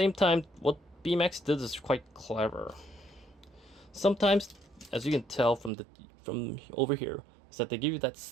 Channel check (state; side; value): drops out; left; at 5.7 s